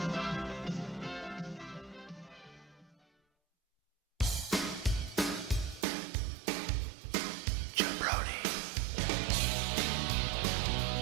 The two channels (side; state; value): left; drops out; at 5.9 s